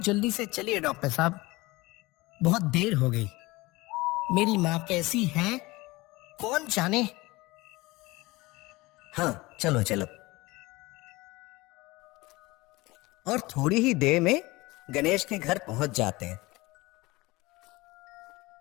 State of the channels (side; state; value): right; quieter; 21.6 dB